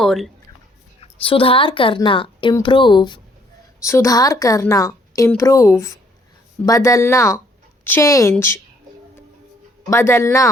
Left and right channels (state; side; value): normal; both; correlation 0.65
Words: सुधार करना, इम्प्रूव, सुधार करना, इम्प्रूव, बदलना, चेंज, बदलना,